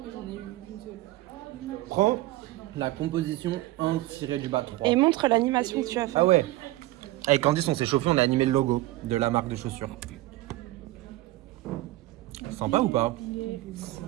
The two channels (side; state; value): left; quieter; 17.7 dB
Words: mais j'en ai eu une seule. Prends la composition 1-3. Et montre l'animation que tu as fait. Ah ouais. Avec Candice, on s'est chauffé, on a animé le logo de la marque de chaussures. Sympa ou pas?